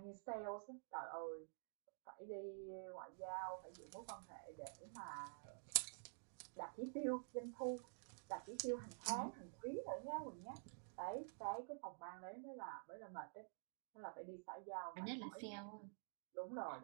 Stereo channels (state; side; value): silent; left; digital silence